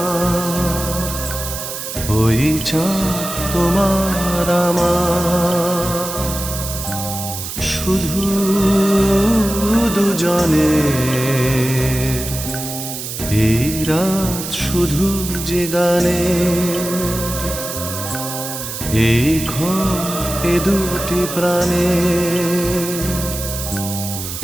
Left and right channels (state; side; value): noise; right; hiss, 7 dB below the sound